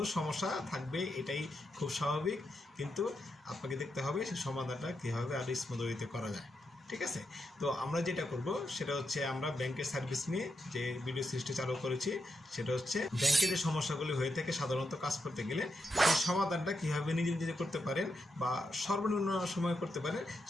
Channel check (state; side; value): normal; both; correlation 0.84